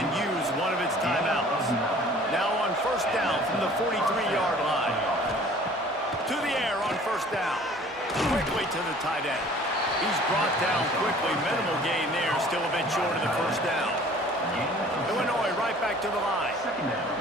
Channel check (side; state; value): both; normal; correlation 0.50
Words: use one of its timeouts. Now on first down from the 43-yard line. To the air on first down. Quickly to the tight end. He's brought down quickly. Minimal gain there, still a bit short of the first down. Illinois right back to the line.